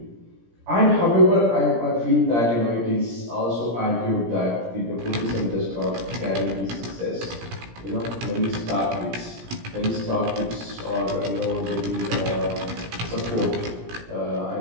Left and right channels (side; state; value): left; late; 17 ms